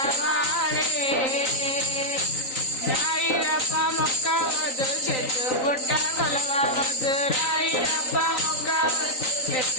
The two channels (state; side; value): late; right; 3.9 ms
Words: రాయిరప్ప మొక్కవద్దు చెట్టు పుట్ట కొలవవద్దు రాయిరప్ప మొక్కవద్దు